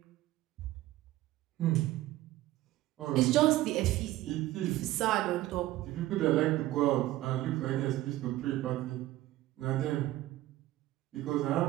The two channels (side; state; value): left; quieter; 16.0 dB